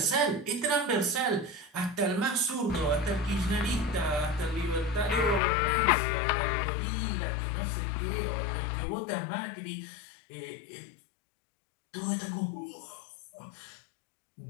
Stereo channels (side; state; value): right; drops out; at 5.4 s